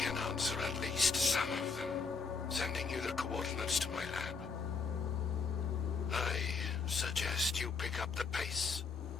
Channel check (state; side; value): quieter; right; 5.0 dB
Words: answer at least some of them, sending you the coordinates to my lab. I suggest you pick up the pace.